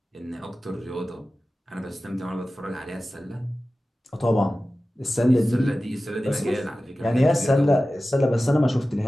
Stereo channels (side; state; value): both; normal; correlation 0.95